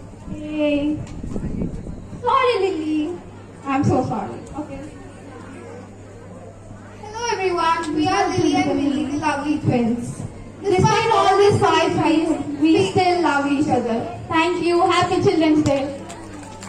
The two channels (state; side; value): identical; both; correlation 1.00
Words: Hey. Sorry, Lily. I'm so sorry. Okay. Hello, everyone. We are Lily and Millie, the lovely twins. Despite all these fights, we still love each other. Thank you. Happy Children's Day.